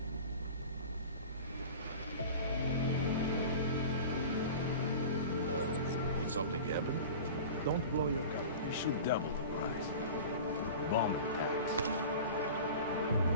Did something happen? Don't blow your gun. We should double the price. Bomb tax.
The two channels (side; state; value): both; inverted; correlation -0.36